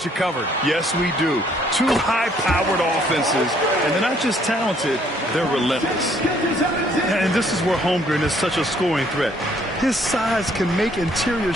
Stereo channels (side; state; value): both; normal; correlation 0.64